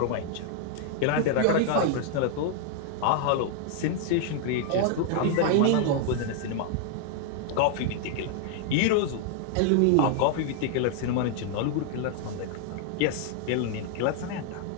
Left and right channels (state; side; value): different; both; correlation 0.00